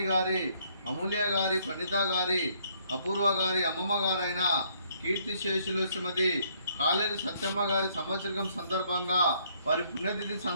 గారి, అమూల్య గారి, ప్రణీత గారి, అపూర్వ గారి అమ్మమ్మ గారైన కీర్తిశేషులు శ్రీమతి కాలేరు సత్యమ్మ గారి సంవత్సరం సందర్భంగా, వారి పుణ్యతిథి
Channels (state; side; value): inverted; both; correlation -0.67